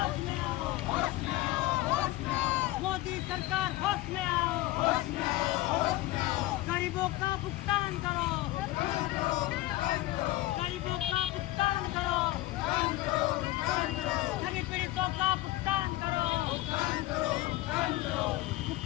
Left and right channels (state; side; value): quieter; right; 17.7 dB